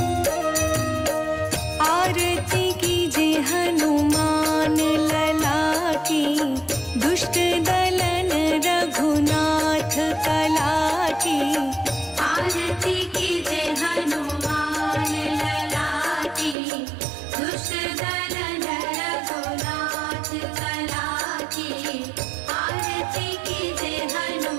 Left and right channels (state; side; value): drops out; left; at 16.6 s